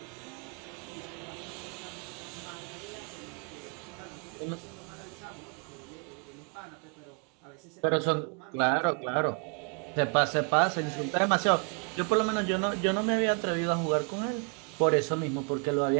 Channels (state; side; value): quieter; left; 39.5 dB